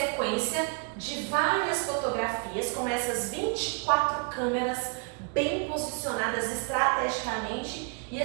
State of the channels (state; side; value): quieter; left; 37.7 dB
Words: de várias fotografias com essas 24 câmeras bem posicionadas estrategicamente, e